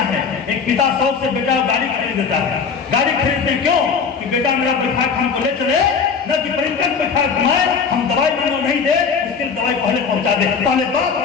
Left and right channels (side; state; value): right; quieter; 5.8 dB